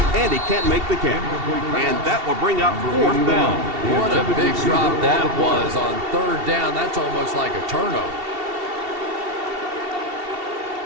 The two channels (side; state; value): left; late; 2.7 ms